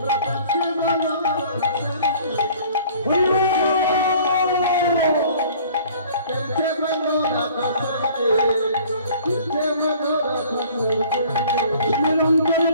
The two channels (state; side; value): inverted; both; correlation -0.51